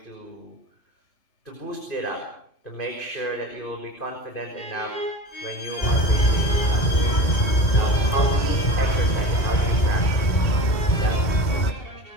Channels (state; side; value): late; right; 2.2 ms